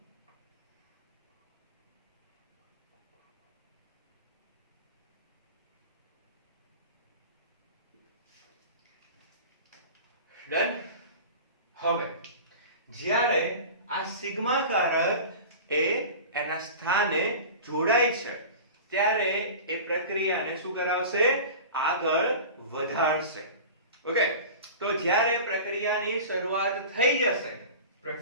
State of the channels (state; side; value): inverted; both; correlation -0.35